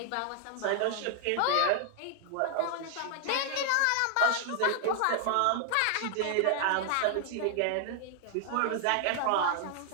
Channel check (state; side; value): different; both; correlation 0.00